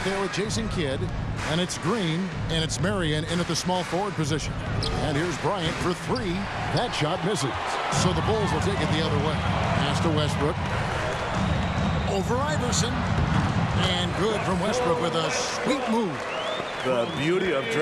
there with Jason Kidd, and it's Green, and it's Marion in at the small forward position. And here's Bryant for 3. That shot misses. So the Bulls will take it the other way. Pass to Westbrook. Over Iverson. And good from Westbrook with a sweet move. The beauty of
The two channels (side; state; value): both; identical; correlation 1.00